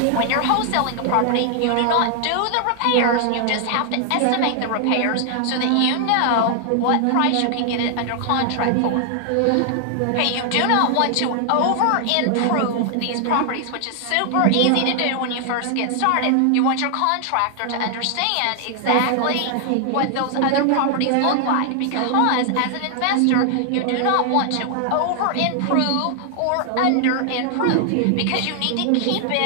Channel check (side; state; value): both; different; correlation 0.00